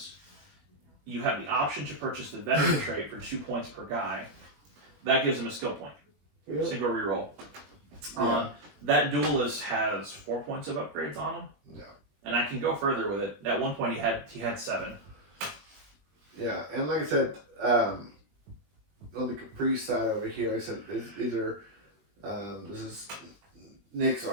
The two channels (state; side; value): late; left; 20 ms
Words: You have the option to purchase the veteran trait for 2 points per guy. That gives them a skill point. Really? Single reroll. Yeah. That duelist has 4 points of upgrades on him. Yeah. And I can go further with it. At one point, he had 7. Yeah, and like I said, on the Caprice side over here, like I said these are this is Nick's